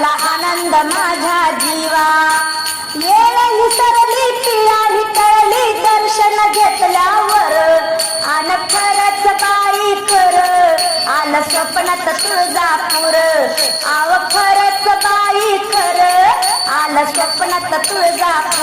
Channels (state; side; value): identical; both; correlation 1.00